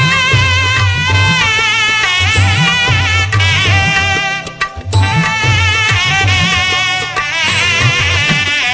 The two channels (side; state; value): both; identical; correlation 1.00